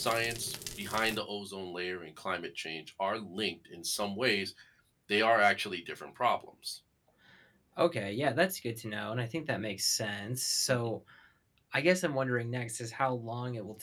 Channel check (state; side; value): identical; both; correlation 1.00